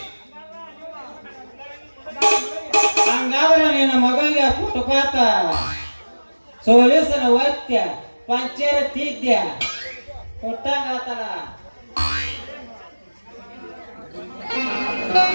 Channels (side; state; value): both; inverted; correlation -1.00